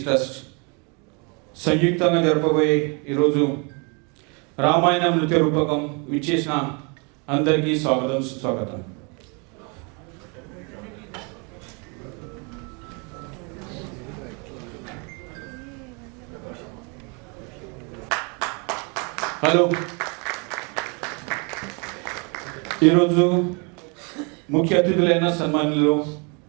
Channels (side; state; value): left; quieter; 33.1 dB